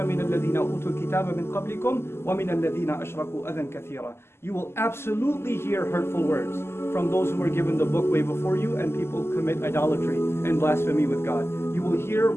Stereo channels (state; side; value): late; right; 0.12 ms